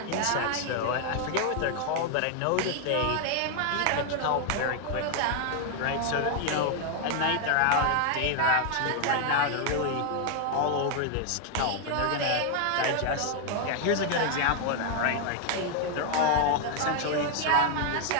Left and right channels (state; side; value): different; both; correlation 0.00